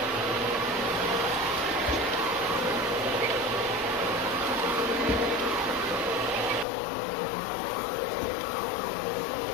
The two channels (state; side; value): drops out; right; at 6.7 s